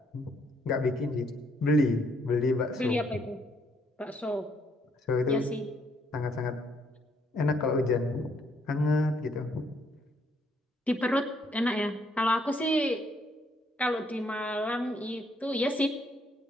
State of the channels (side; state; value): both; normal; correlation 0.70